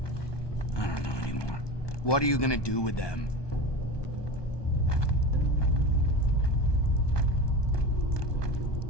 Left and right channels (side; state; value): right; late; 1.2 ms